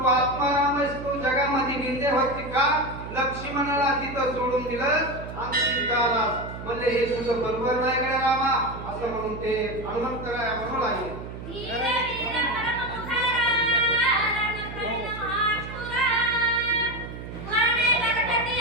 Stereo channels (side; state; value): right; noise; hum, 10 dB below the sound